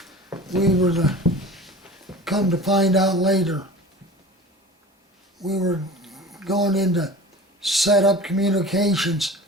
We were come to find out later, we were going in to set up communications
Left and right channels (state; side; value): normal; both; correlation 0.38